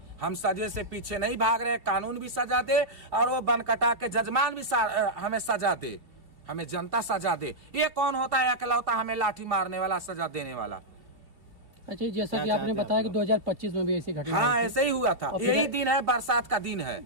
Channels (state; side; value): late; left; 2.4 ms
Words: हम सजे से पीछे नहीं भाग रहे, कानून भी सजा दे और वो बनकटा के जजमान भी हमें सजा दे, हमें जनता सजा दे। ये कौन होता है अकेलौता हमें लाठी मारने वाला, सजा देने वाला? अच्छा, जैसा कि आपने बताया कि 2025 में भी ऐसी घटना, हाँ ऐसे ही हुआ था। यही दिन है, बरसात का दिन है,